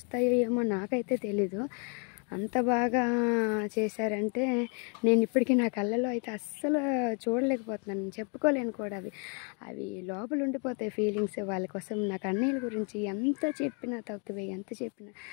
ఏమో నాకైతే తెలీదు. అంత బాగా చేశారంటే నేను ఇప్పటికీ నా కళ్ళలో అయితే అస్సలు చూడలేకపోతున్నాను, చెప్పుకోలేను కూడా. అవి లోపల ఉండిపోతాయి ఫీలింగ్స్. వాళ్ళ కోసం నాకు అన్నయ్యల గురించి ఎంత చెప్పినా తక్కువే, ఎంత చెప్పినా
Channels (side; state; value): right; quieter; 37.8 dB